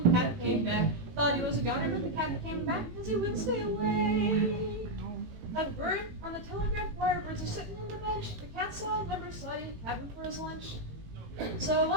cat came back. Thought he was a goner, but the cat came back because he wouldn't stay away. A bird on the telegraph wire, birds are sitting on the bench. The cat saw a number, saw he had him for his lunch. So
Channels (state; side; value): late; left; 18 ms